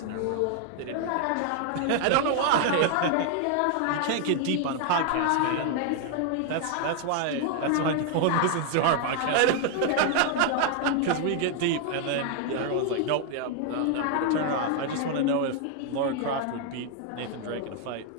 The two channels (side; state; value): both; different; correlation 0.00